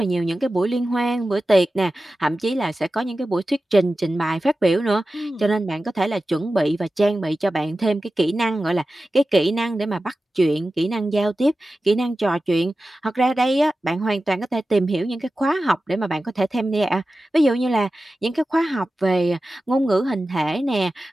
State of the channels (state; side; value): normal; both; correlation 0.94